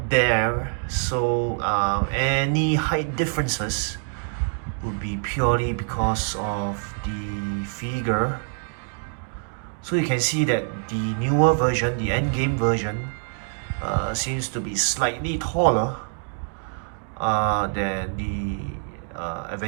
there, so any height differences would be purely because of the figure. So you can see that the newer version, the Endgame version, seems to be slightly taller than the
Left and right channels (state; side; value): silent; left; 55 dB below the other